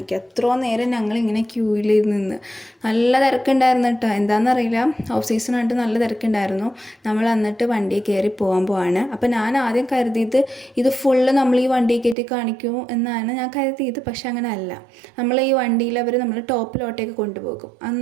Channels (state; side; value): drops out; left; at 12.2 s